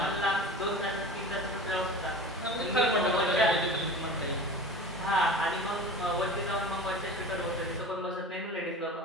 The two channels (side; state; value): both; normal; correlation 0.36